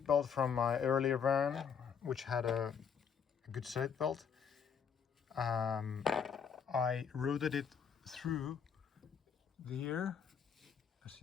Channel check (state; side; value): quieter; right; 7.0 dB